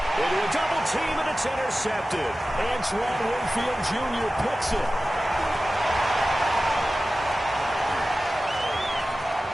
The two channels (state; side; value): normal; both; correlation 0.95